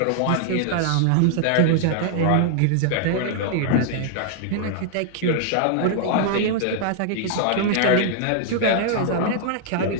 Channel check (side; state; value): both; different; correlation -0.01